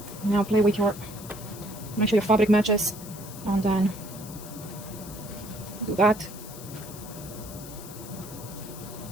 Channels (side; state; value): left; noise; hiss, 15 dB below the sound